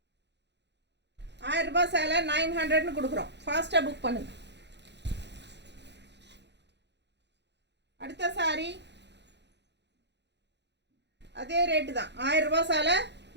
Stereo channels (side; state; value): left; late; 0.50 ms